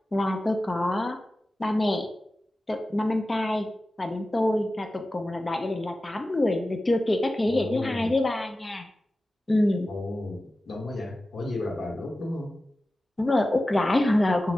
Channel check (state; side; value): normal; both; correlation 0.95